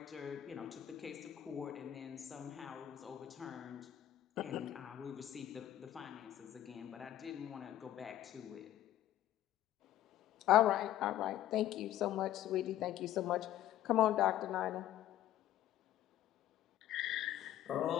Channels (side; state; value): right; quieter; 12.8 dB